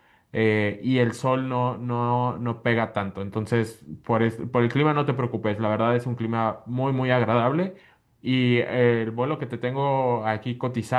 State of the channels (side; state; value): both; identical; correlation 1.00